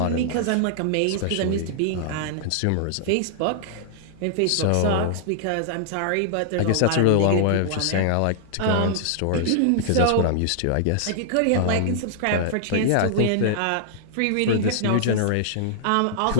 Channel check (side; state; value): both; different; correlation -0.01